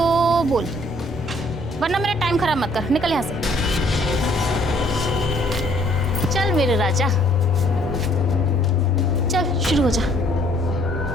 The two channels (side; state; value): both; normal; correlation 0.62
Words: बोल, वरना मेरा टाइम खराब मत कर। निकल यहाँ से। चल मेरे राजा, चल शुरू हो जा।